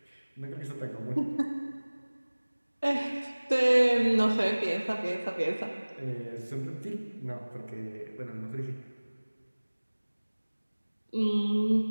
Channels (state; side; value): inverted; both; correlation -1.00